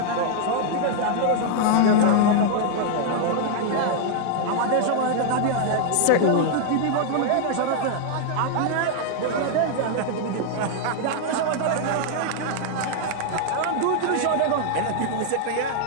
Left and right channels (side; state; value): both; different; correlation -0.01